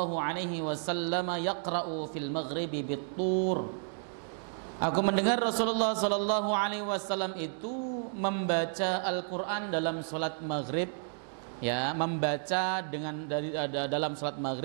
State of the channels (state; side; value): silent; left; digital silence